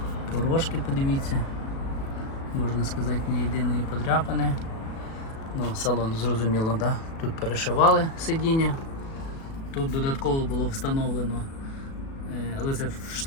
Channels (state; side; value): late; right; 37 ms